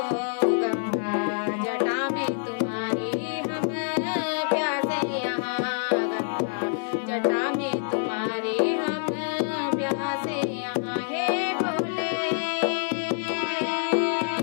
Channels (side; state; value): right; silent; 61 dB below the other